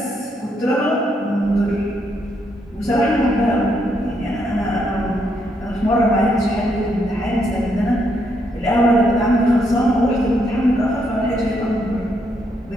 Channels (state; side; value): normal; both; correlation 0.76